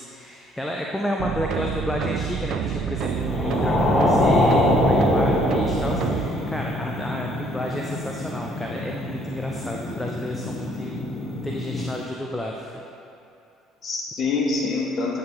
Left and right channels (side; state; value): both; normal; correlation 0.64